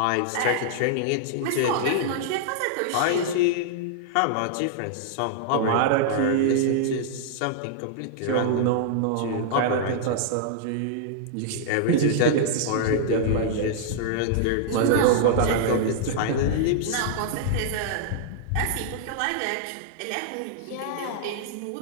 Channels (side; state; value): both; different; correlation -0.01